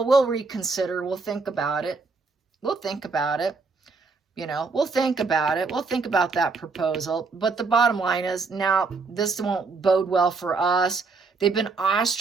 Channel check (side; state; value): left; quieter; 4.3 dB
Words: we'll reconsider. We'll think about it. We'll think about it. We'll think about it. We'll think about that proposal. But the bottom line is, now this won't bode well for us. They've been